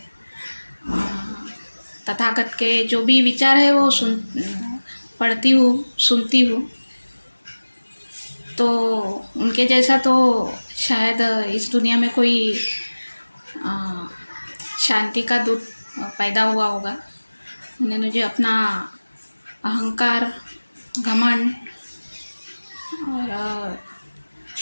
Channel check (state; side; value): inverted; both; correlation -1.00